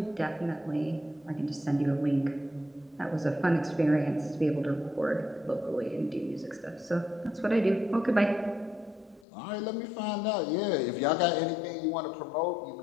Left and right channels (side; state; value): right; drops out; at 9.2 s